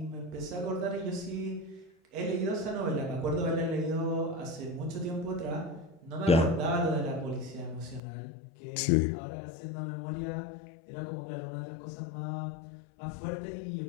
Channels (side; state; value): right; drops out; at 8.0 s